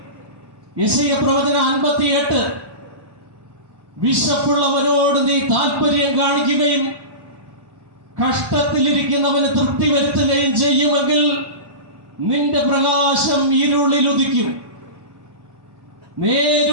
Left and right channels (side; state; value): left; late; 1.1 ms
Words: യെശയ്യാ പ്രവചനം 58, വിശപ്പുള്ളവനോട് നീ താല്പര്യം കാണിക്കുകയും കഷ്ടത്തിലിരിക്കുന്നവന് തൃപ്തി വരുത്തുകയും ചെയ്യുമെങ്കിൽ നിന്റെ പ്രകാശം ഇരുളിൽ ഉദിക്കും.